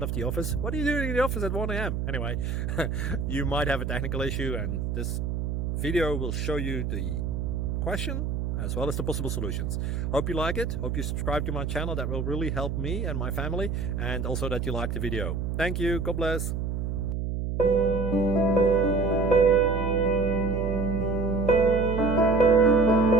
of the office. What are you doing in the office at 1 a.m.? Anyway, you might have a technical issue and this video will show you the question as well as the possible solutions. Hope you like it, hope you subscribe to my channel. That will really help me and my family, and also that you like the video. Thank you, God bless.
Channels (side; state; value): right; noise; hum, 2 dB below the sound